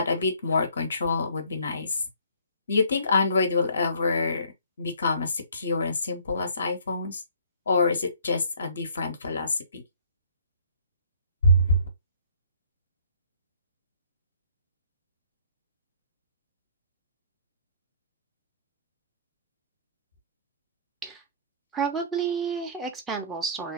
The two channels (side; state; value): both; inverted; correlation -0.58